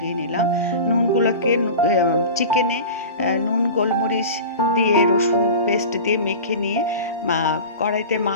নিলাম। নুনগুলোকে চিকেনে নুন গোলমরিচ দিয়ে রসুন পেস্ট দিয়ে মেখে নিয়ে কড়াইতে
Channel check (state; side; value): inverted; both; correlation -0.33